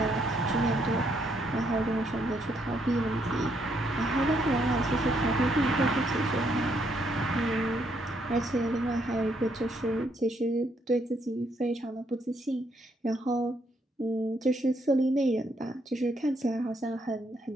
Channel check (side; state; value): both; normal; correlation 0.73